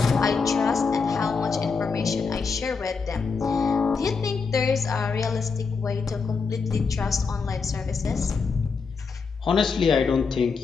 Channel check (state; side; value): quieter; right; 5.0 dB